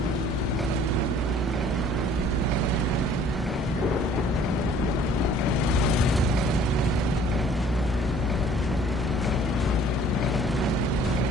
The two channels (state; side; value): normal; both; correlation 0.54